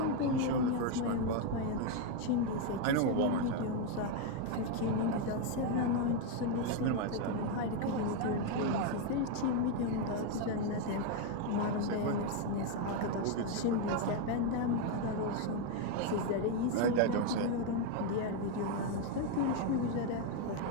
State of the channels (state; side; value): different; both; correlation 0.02